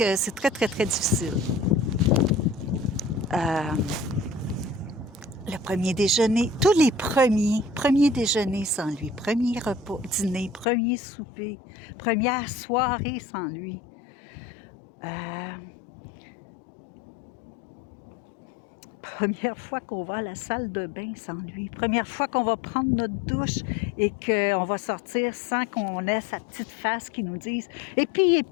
c'est très, très, très difficile. Le premier déjeuner, tous les premiers déjeuners sans lui, premier repas, dîner, premier souper, première soirée sans lui. Première fois qu'on va à la salle de bain sans lui. Première fois qu'on va prendre notre douche et qu'on va sortir sans qu'on ait sa petite face qui nous dise « Et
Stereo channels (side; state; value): right; drops out; at 10.7 s